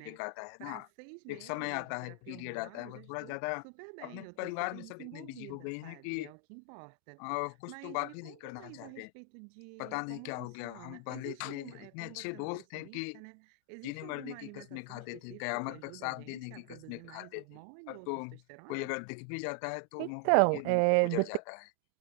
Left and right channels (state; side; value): different; both; correlation 0.00